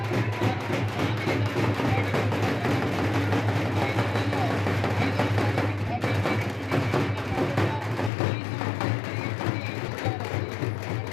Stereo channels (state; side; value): drops out; right; at 8.1 s